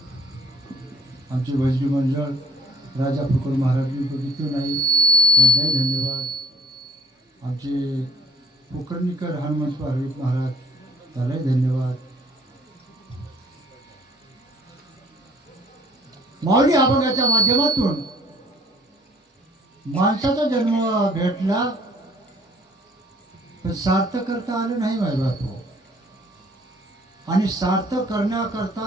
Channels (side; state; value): both; normal; correlation 0.56